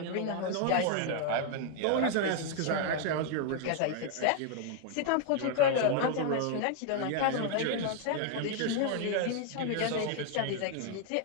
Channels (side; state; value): both; different; correlation 0.00